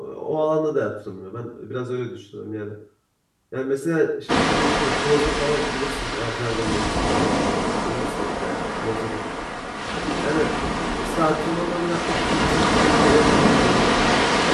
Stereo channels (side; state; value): both; identical; correlation 1.00